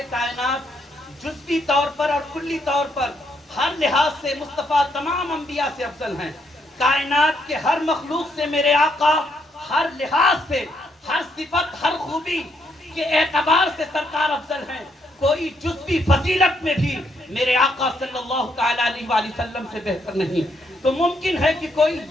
کائنات جزوی طور پر اور کلی طور پر ہر لحاظ سے مصطفیٰ تمام انبیاء سے افضل ہیں۔ کائنات کے ہر مخلوق سے میرے آقا ہر لحاظ سے، ہر صفت، ہر خوبی کے اعتبار سے سرکار افضل ہیں۔ کوئی جزوی فضیلت میں بھی میرے آقا صلی اللہ تعالیٰ علیہ وآلہ وسلم سے بہتر نہیں۔ تو ممکن ہے کہ کوئی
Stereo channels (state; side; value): normal; both; correlation 0.74